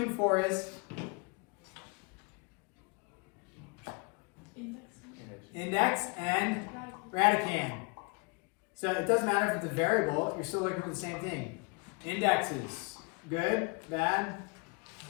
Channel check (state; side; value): quieter; right; 31.6 dB